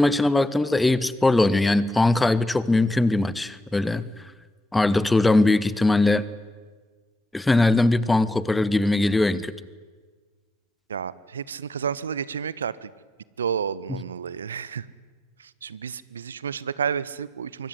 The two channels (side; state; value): both; normal; correlation 0.82